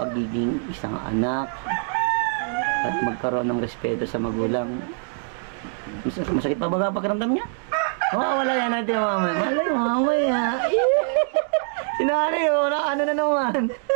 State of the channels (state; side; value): silent; left; 63 dB below the other